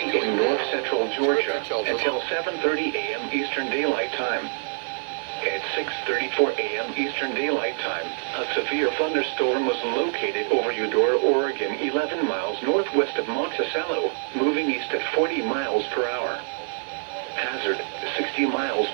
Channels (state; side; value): silent; left; digital silence